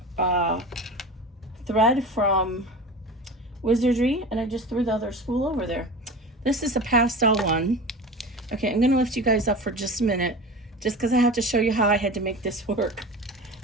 thread from Wizardry, and I just threw the other spool over there. This is a pastel one. Okay, I'm gonna lift you guys up for just a minute, just because I have to show you how I had to make this work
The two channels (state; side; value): normal; both; correlation 0.33